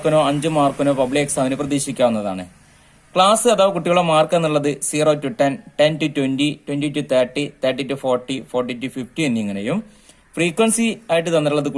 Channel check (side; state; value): both; identical; correlation 1.00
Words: 5 മാർക്കിനോ പബ്ലിക് എക്സാമിന് പ്രതീക്ഷിക്കാവുന്നതാണ്. ക്ലാസ് അഥവാ കുട്ടികളുടെ മാർക്ക് എന്നുള്ളത് 0 to 10, 10 to 20, 20 to 30, 30 to 40, 40 to 50 എന്നിങ്ങനെയും frequency ആയിട്ട് തന്നിട്ടുള്ളത്